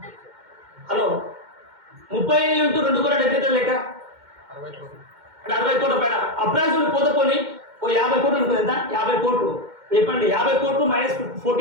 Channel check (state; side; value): late; left; 2.1 ms